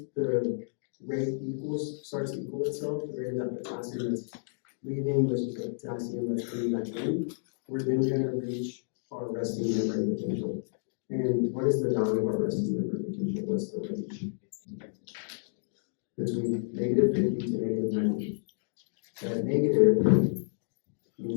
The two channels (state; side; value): silent; right; digital silence